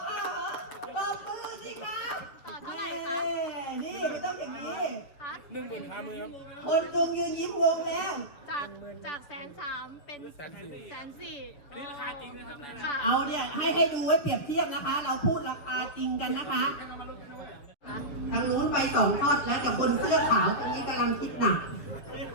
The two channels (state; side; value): late; right; 7.1 ms